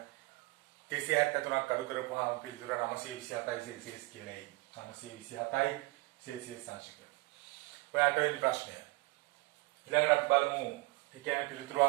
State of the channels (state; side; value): quieter; left; 23.4 dB